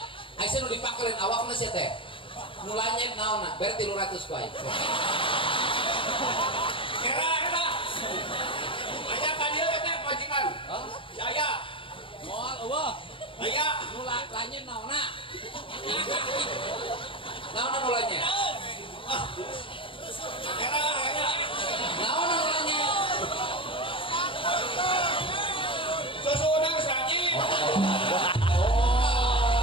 Aya nu dipakeun awakna sia teh. Nu langit naonna? Berarti 300 ku aing. Era. Ayah tadi teh majikan. Hah? Saya. Moal eueuh. Ayah. Nu langit naonna? Naonna nu langit? Era. Naonna nu langit? Susu udah keseranye.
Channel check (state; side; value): late; right; 0.25 ms